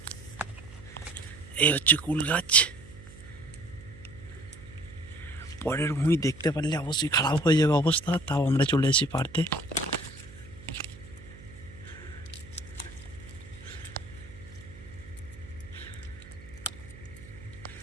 এই হচ্ছে কুল গাছ। পরের ভূমি দেখতে পারলে অবশ্যই খারাপ হয়ে যাবে অবস্থা, তাও আমরা চলে এসেছি পারতে।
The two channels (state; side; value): noise; right; hum, 18 dB below the sound